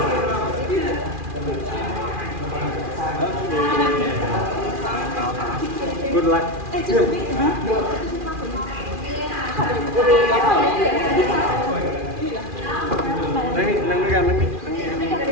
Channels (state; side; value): late; left; 2.4 ms